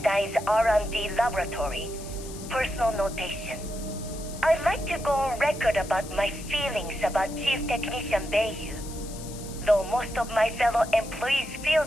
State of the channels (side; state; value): left; noise; hiss, 15 dB below the sound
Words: R&D laboratory. Personal notation. I'd like to go on record about my feelings about Chief Technician Bayu. Though most of my fellow employees feel